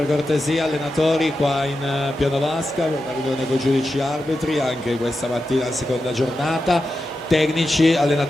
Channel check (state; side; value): normal; both; correlation 0.90